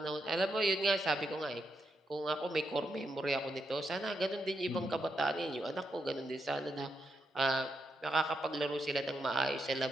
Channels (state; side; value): normal; both; correlation 0.82